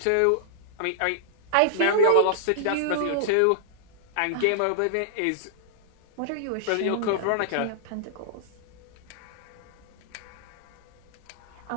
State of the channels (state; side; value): different; both; correlation -0.02